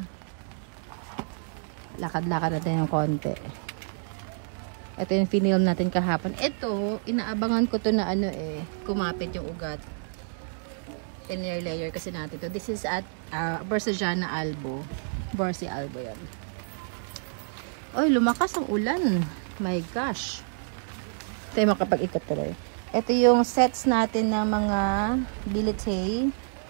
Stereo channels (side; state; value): left; silent; digital silence